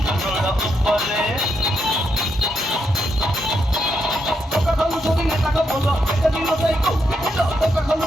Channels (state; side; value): normal; both; correlation 0.81